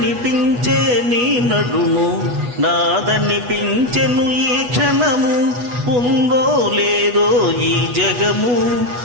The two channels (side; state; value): left; late; 8.2 ms